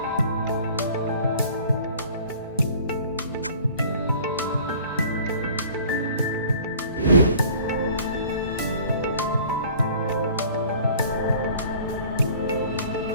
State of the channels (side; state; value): both; inverted; correlation -0.50